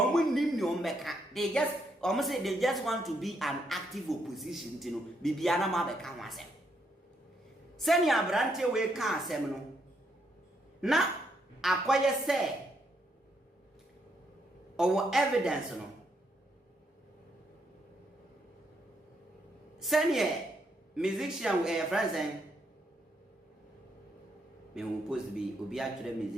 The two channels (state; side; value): normal; both; correlation 0.76